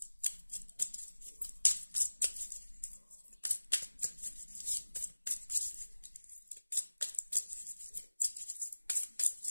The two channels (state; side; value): inverted; both; correlation -1.00